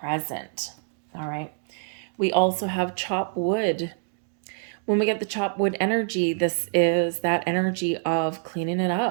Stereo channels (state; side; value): silent; left; digital silence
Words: All right, we also have chop wood. When we get the chop wood energy, this is that energy of cleaning it